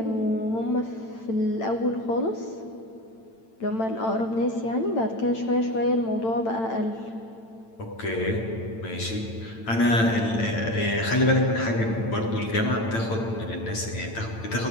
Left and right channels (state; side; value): late; right; 8.9 ms